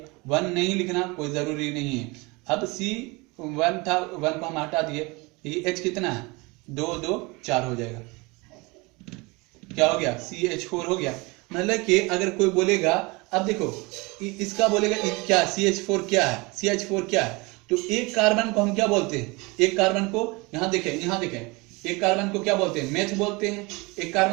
1 नहीं लिखना कोई जरूरी नहीं है। अब C1 था, 1 को हम हटा दिए, ये H कितना है 2 2 4 हो जाएगा, क्या हो गया CH4 हो गया। मतलब कि अगर कोई बोलेगा, अब देखो इसका बोलेगा क्या CH4 क्या है, CH4 क्या है, तो एक कार्बन को हम क्या बोलते हैं, एक कार्बन को यहाँ देखें एक कार्बन को क्या बोलते हैं मेथ बोलते हैं, एक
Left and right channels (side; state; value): left; quieter; 25.7 dB